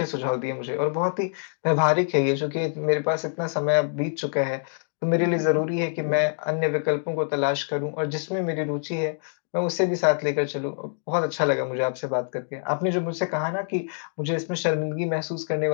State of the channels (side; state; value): right; silent; digital silence